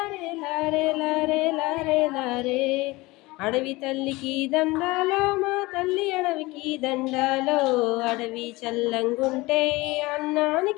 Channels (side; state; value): right; quieter; 21.7 dB